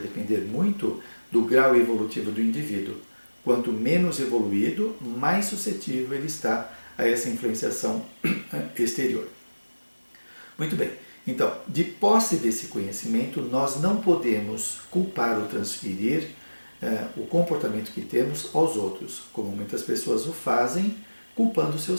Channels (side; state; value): both; inverted; correlation -1.00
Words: depender muito do grau evolutivo do indivíduo. Quanto menos evoluído, mais suscetível ele está a essa influenciação exterior. Muito bem, então, de posse desse conhecimento, nós não podemos culpar ou transferir o comportamento que temos aos outros, como muitas pessoas o fazem, culpando